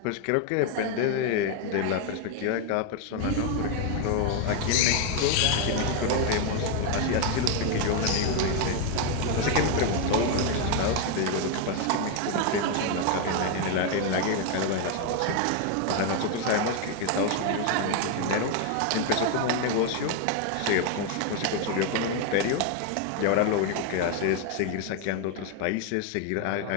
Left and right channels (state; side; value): different; both; correlation 0.01